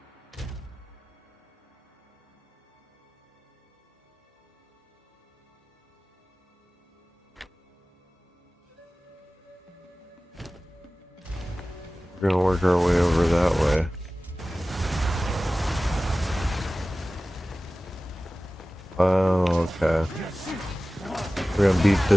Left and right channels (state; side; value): normal; both; correlation 0.97